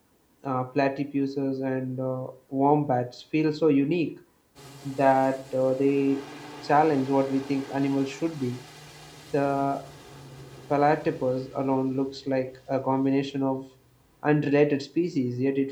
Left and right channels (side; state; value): both; identical; correlation 1.00